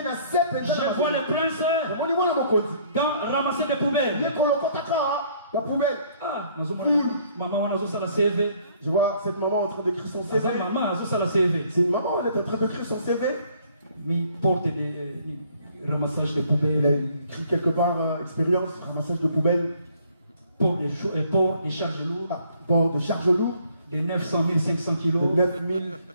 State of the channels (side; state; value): both; inverted; correlation -0.62